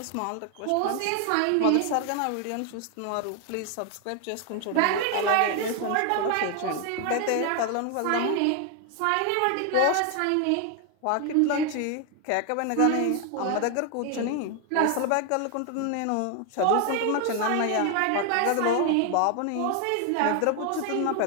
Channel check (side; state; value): both; different; correlation 0.01